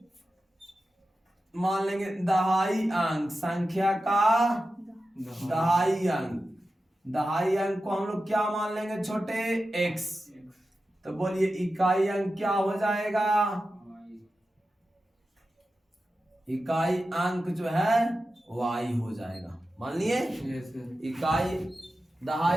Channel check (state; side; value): normal; both; correlation 0.92